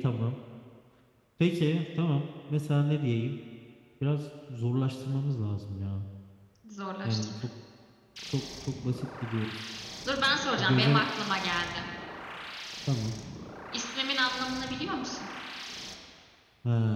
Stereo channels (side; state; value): both; identical; correlation 1.00